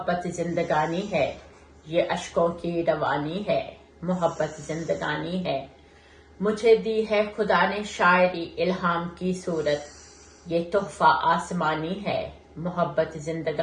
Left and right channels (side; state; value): both; identical; correlation 1.00